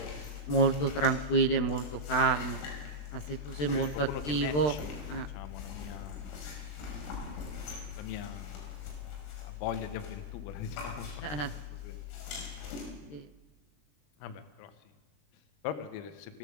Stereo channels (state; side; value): late; right; 20 ms